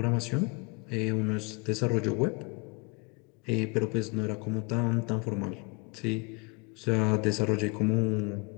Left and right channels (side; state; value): right; quieter; 29.5 dB